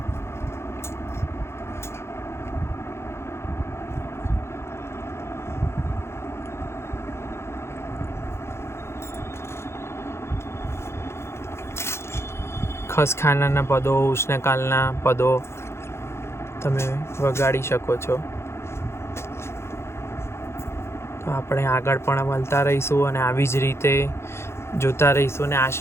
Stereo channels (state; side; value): late; right; 0.13 ms